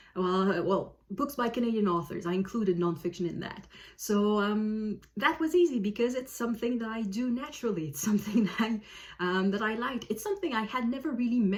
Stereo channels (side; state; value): both; identical; correlation 1.00